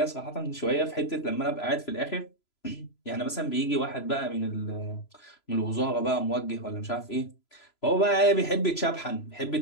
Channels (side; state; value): right; late; 3.0 ms